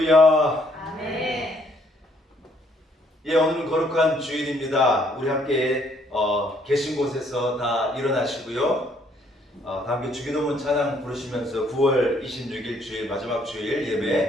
아멘. 예, 오늘은 거룩한 주일입니다. 우리 함께 계신 곳에서 다 일어나시고요. 다 함께 주기도문 찬양 부르시면서 9월 26일 주일 마지막 주일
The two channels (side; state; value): both; normal; correlation 0.67